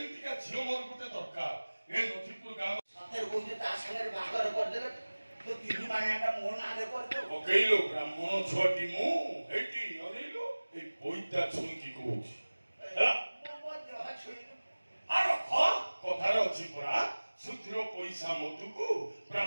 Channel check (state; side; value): inverted; both; correlation -1.00